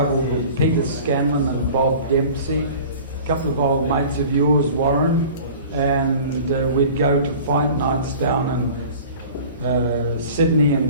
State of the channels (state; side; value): inverted; both; correlation -0.42